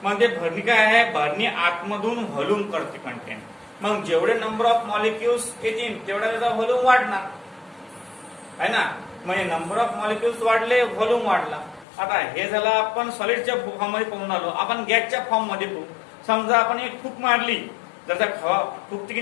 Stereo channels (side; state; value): right; drops out; at 11.9 s